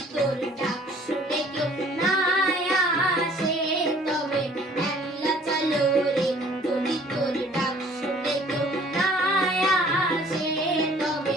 তোর ডাক শুনে কেউ না আসে তবে একলা চলো রে। যদি তোর ডাক শুনে কেউ না আসে তবে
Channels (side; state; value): both; normal; correlation 0.55